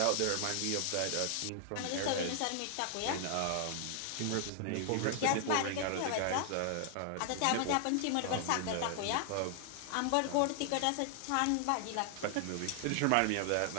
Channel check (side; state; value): both; different; correlation 0.00